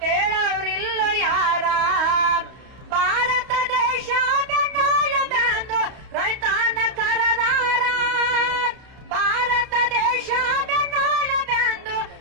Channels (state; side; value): late; left; 31 ms